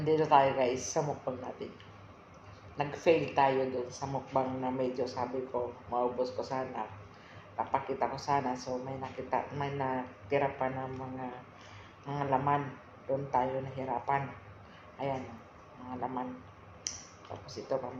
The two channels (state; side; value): identical; both; correlation 1.00